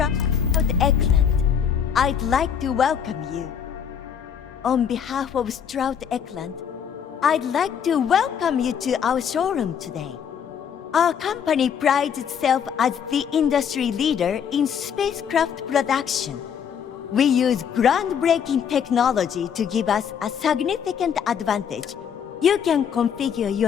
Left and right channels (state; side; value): quieter; right; 7.9 dB